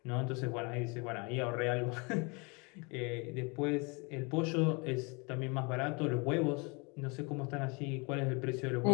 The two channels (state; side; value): quieter; right; 30.3 dB